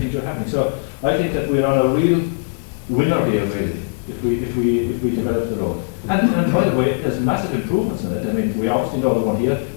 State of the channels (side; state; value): right; silent; digital silence